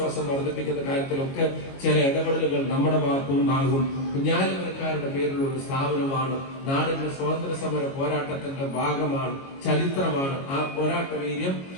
വർദ്ധിപ്പിക്കുന്ന കാര്യത്തിലൊക്കെ ചില ഇടപെടലുകൾ നമ്മുടെ ഭാഗത്തുനിന്നാകും. കുഞ്ഞാലിമരക്കാരുടെ പേരിലുള്ള ഒരു സ്ഥാപനമാണ്. നാടിന്റെ സ്വാതന്ത്ര്യ സമര പോരാട്ടത്തിന്റെ ഭാഗമാണ്, ചരിത്രമാണ്. ആ പോരാട്ട വീര്യം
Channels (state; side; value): late; right; 22 ms